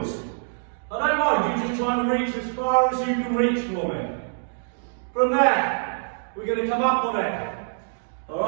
I don't mind, you just try and reach as far as you can reach for me. From there, we're going to come up on it.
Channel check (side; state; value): left; silent; digital silence